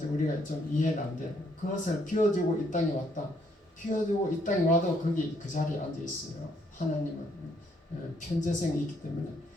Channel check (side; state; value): both; normal; correlation 0.70